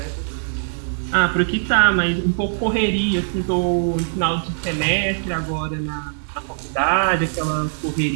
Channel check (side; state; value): left; silent; 58 dB below the other